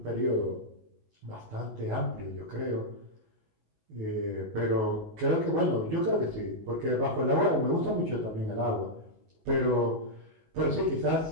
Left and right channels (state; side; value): late; left; 19 ms